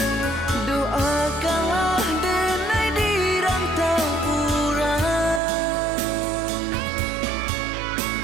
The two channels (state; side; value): drops out; left; at 5.4 s